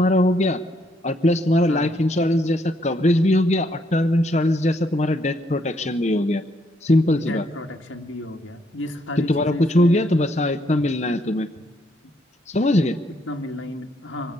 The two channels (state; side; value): normal; both; correlation 0.72